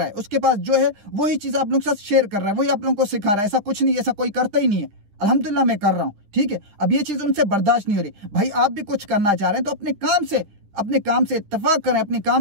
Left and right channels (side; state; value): left; late; 10 ms